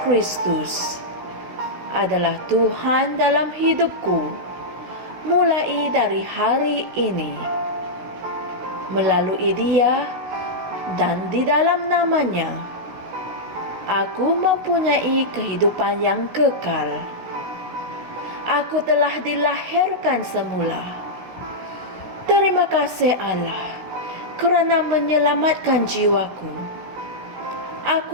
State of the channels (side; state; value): left; late; 16 ms